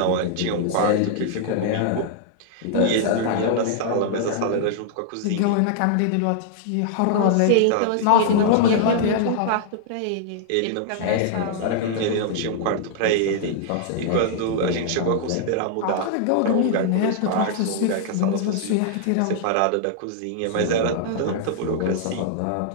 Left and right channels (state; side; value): different; both; correlation -0.01